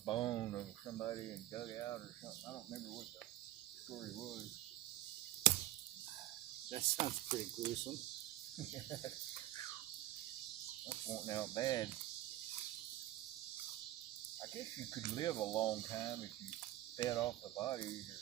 bone of somebody and dug it out or something. I don't remember what the story was. That sounds pretty gruesome. That's wanting out bad. I guess you could live a long time if you fed off the bodies or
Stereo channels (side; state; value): left; quieter; 14.8 dB